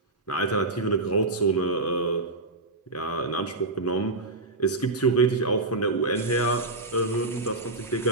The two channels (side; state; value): left; quieter; 3.0 dB